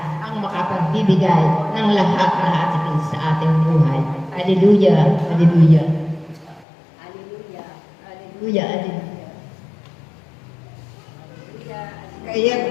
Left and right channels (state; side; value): drops out; right; at 6.7 s